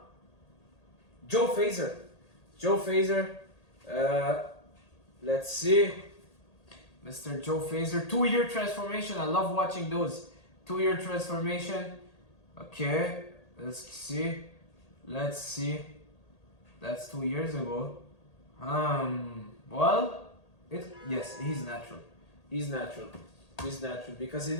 Joe Fraser. Let's see. Mr. Joe Fraser. 2-year transformation. I love watching those. 2-year transformation. Okay, let's see. That's 2 years ago. Well... Yes, he's natural. He's natural because he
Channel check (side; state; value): right; late; 1.8 ms